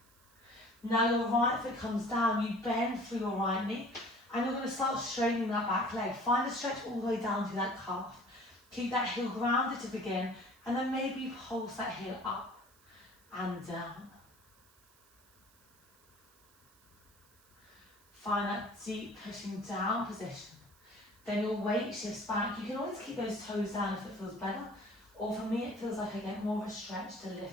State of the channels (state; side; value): noise; right; hiss, 29 dB below the sound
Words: Now your right foot comes down, you bend through your right knee and you're going to start straightening that back leg. Find a stretch all the way down to that calf. Keep that heel grounded to begin and then maybe you pulse that heel up and down. Find that deep pushing down position. Then your weight shifts back. You can always keep those toes down if it feels better. Or for me, it feels like I get more of a stretch to